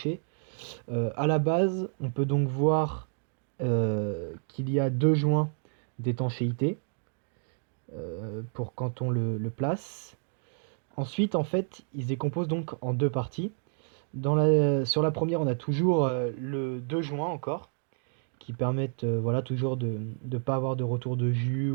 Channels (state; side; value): silent; left; 58 dB below the other